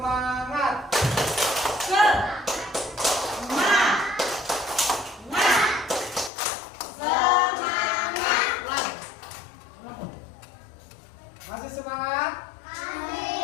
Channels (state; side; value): drops out; right; at 6.3 s